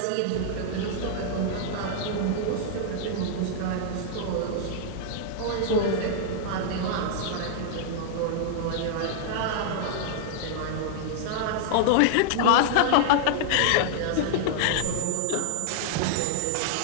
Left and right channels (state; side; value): different; both; correlation -0.01